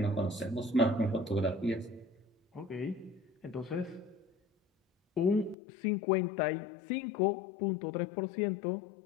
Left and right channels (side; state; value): right; drops out; at 5.6 s